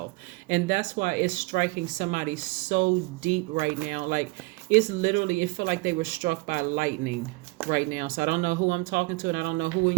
And that's why it's striking somebody so deep right now. Like, it's literally, it feel like they were struck by lightning right now. So I don't know who I'm talking to, and I don't know who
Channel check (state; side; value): quieter; left; 25.1 dB